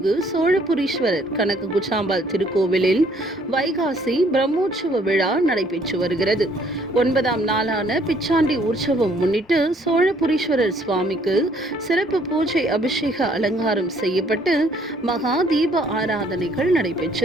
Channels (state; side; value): normal; both; correlation 0.63